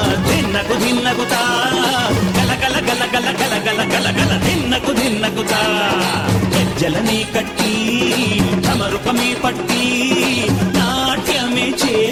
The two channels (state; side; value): identical; both; correlation 1.00